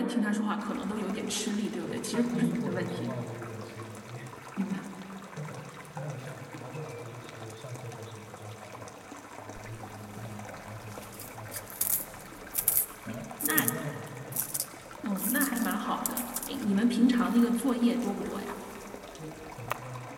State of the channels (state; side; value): identical; both; correlation 1.00